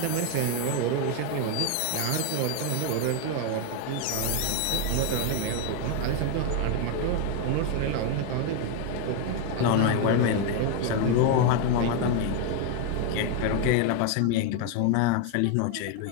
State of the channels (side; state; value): both; different; correlation 0.01